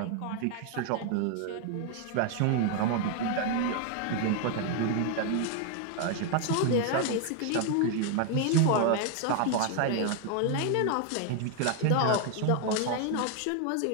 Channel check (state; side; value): different; both; correlation 0.00